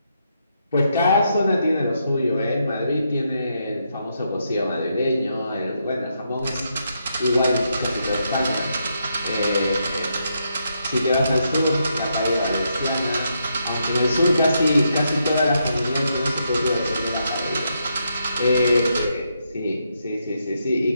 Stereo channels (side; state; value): both; inverted; correlation -0.80